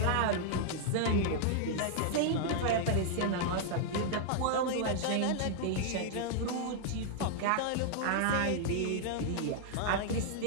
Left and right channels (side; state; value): both; different; correlation -0.01